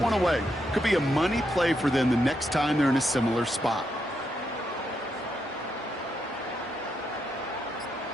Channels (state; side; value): normal; both; correlation 0.81